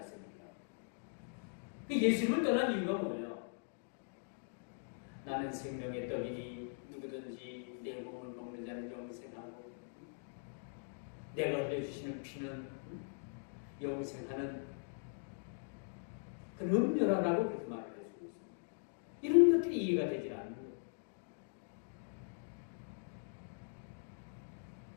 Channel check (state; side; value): silent; right; digital silence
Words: 그 예수님을 떠난 이유가 뭐예요? 나는 생명의 떡이니 누구든지 내 몸을 먹는 자는 영생하고 내가 흘려주시는 피는 영생하는 그런 음료라고 그렇게 말을 해주고 있습니다. 이런 것들이 이해가 되지 않는 거예요.